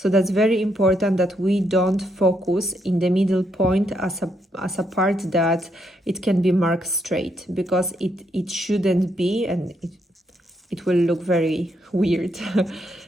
that's very important that we don't focus in the middle point as a part that it can be marked straight, because it shouldn't be, and it will look very weird.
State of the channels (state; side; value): normal; both; correlation 0.76